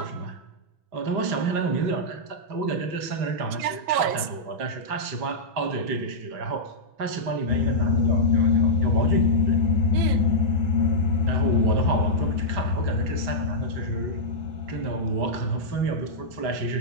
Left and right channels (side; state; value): left; late; 6.1 ms